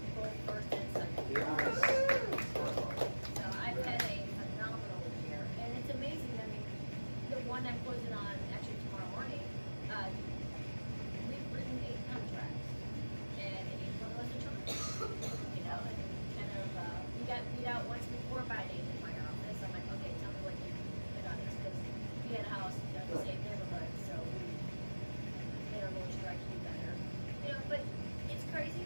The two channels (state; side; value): inverted; both; correlation -1.00